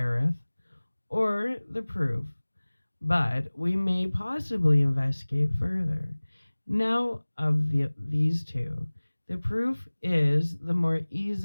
or the proof, but we may possibly investigate further. Now, of these two, the proof is the more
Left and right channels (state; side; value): inverted; both; correlation -1.00